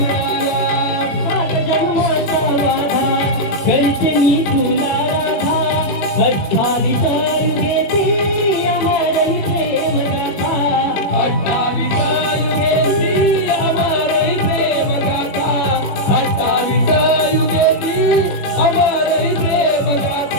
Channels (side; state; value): right; late; 20 ms